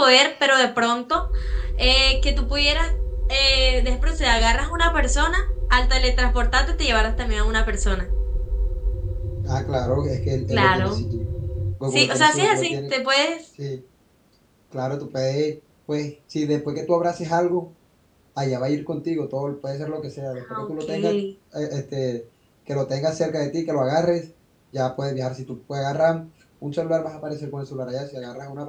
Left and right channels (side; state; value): both; identical; correlation 1.00